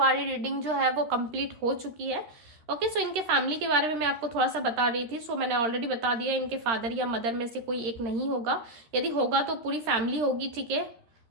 रीडिंग जो है वो कंप्लीट हो चुकी है, ओके। सो इनके फैमिली के बारे में मैं आपको थोड़ा सा बता रही थी, सो मैंने ऑलरेडी बता दिया, इनके फादर या मदर में से कोई एक नहीं होगा, यदि होगा तो पूरी फैमिली होगी, ठीक है।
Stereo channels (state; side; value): late; left; 13 ms